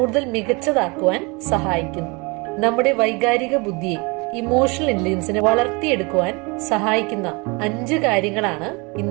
മികച്ചതാക്കുവാൻ സഹായിക്കുന്നു. നമ്മുടെ വൈകാരിക ബുദ്ധിയെ, ഇമോഷണൽ ഇന്റലിജൻസിനെ വളർത്തിയെടുക്കുവാൻ സഹായിക്കുന്ന 5 കാര്യങ്ങളാണ്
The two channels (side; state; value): left; quieter; 28.3 dB